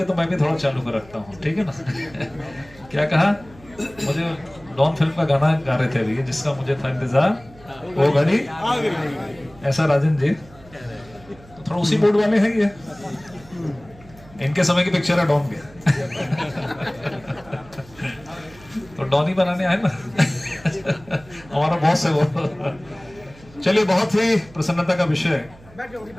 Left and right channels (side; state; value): right; noise; hum, 23 dB below the sound